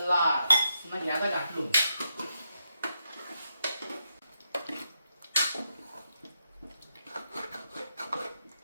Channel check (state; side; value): inverted; both; correlation -0.83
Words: ना घ्यायचा घाटलून.